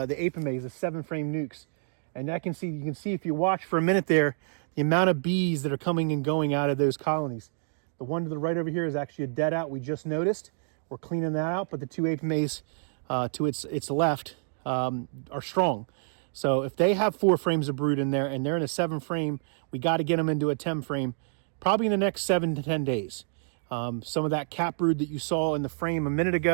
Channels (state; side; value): silent; left; digital silence